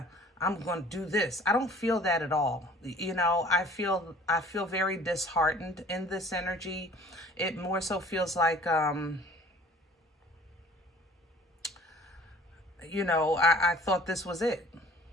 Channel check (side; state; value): both; normal; correlation 0.50